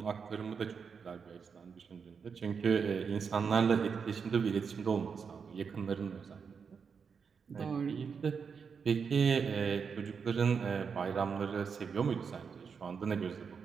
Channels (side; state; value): left; quieter; 6.0 dB